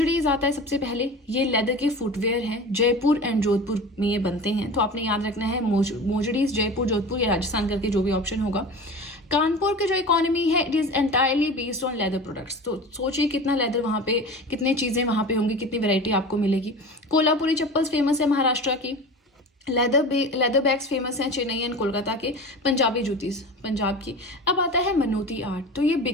आता है सबसे पहले, ये लेदर के फुटवेयर हैं, जयपुर एंड जोधपुर में ये बनते हैं, तो आपने याद रखना है मोजड़ीज जयपुर जोधपुर या राजस्थान करके जो भी ऑप्शन होगा। कानपुर की जो इकोनॉमी है it is entirely based on leather products, तो सोचिए कितना लेदर वहाँ पे, कितनी चीजें वहाँ पे होंगी, कितनी वैरायटी आपको मिलेगी। कोल्हापुरी चप्पल्स फेमस है महाराष्ट्र की, लेदर बैग्स फेमस हैं चेन्नई एंड कोलकाता के, पंजाबी जूतीज पंजाब की। अब आता है मनोती आर्ट, तो ये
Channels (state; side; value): normal; both; correlation 0.33